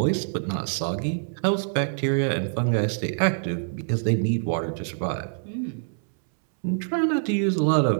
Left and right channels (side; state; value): left; silent; 62 dB below the other